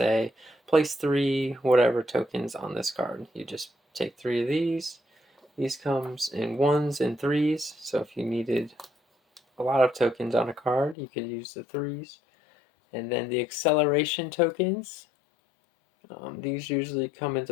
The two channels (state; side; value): drops out; right; at 11.0 s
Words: place 3 whatever tokens on this card. You just take 3 of these. These comes in 1s and 3s. So if you needed a lot of tokens on a card, you could use the 3s. And then the acceleration tokens, these usually come